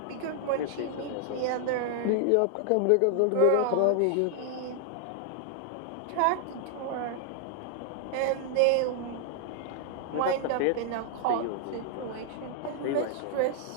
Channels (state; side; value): different; both; correlation 0.00